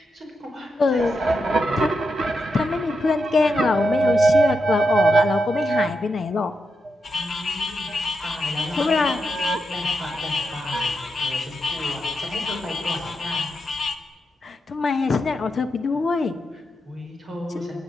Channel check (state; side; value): normal; both; correlation 0.86